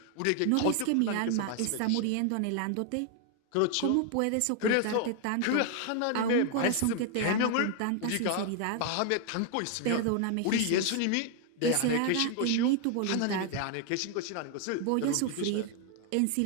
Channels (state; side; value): different; both; correlation 0.00